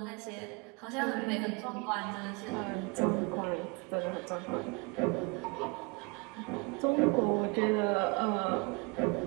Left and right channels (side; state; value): left; quieter; 30.2 dB